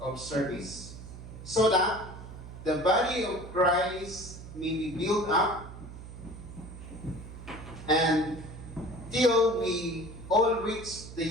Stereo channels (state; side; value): noise; right; hum, 13 dB below the sound